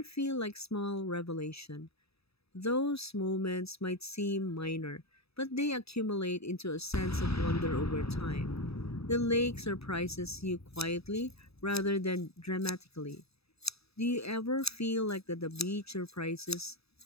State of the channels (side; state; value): right; late; 0.78 ms